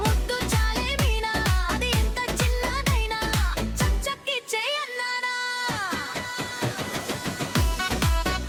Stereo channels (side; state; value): both; identical; correlation 1.00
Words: ముద్దు చాలే మీనా అది ఎంత చిన్నదైనా చక్ చక్ ఇచ్చే అన్నానా